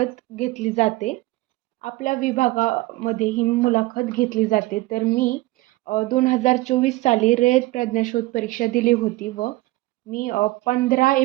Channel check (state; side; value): quieter; left; 19.4 dB